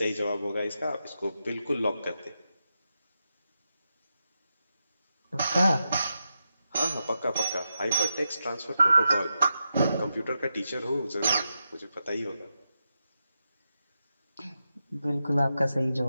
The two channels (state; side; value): inverted; both; correlation -0.88